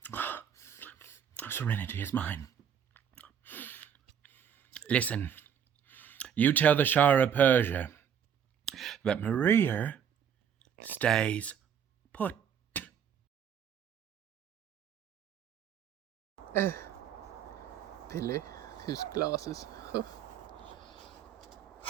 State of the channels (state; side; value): quieter; left; 8.4 dB